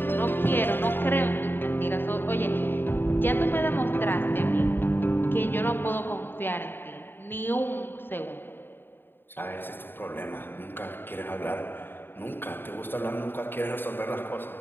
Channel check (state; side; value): late; right; 0.098 ms